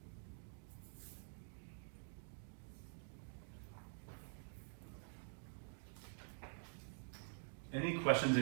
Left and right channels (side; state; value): left; silent; digital silence